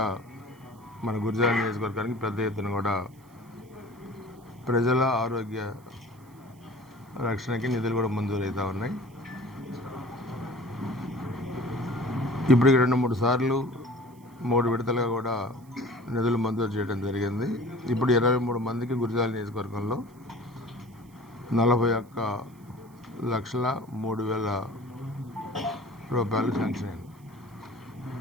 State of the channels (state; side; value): noise; right; hiss, 30 dB below the sound